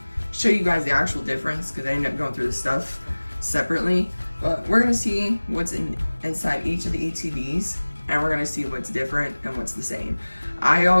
show you guys the actual difference, because I ended up going through the stuff separately. But we're going to see what's inside each of the ETBs, and we're going to see what's different and what's the same. I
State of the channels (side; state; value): both; inverted; correlation -1.00